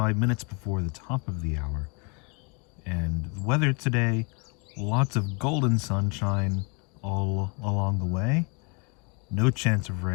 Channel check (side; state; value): right; quieter; 33.1 dB